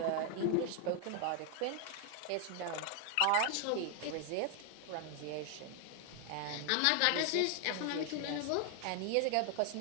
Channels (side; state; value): both; different; correlation 0.00